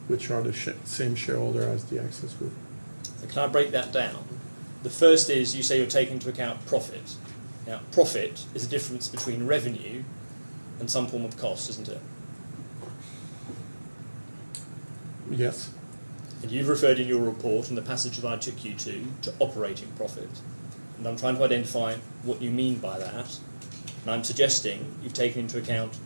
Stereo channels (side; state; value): both; inverted; correlation -1.00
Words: which are the same shareholder as the Access Group. So can I break that down? The first is you say you're taking into account profit. Now, profit is a difference between revenue and some form of cost, isn't it? Yes. And you've referred in your report, in the passage that I took you to operating profit. And I'm trying to identify what you mean by that. And I'm suggesting you've taken into account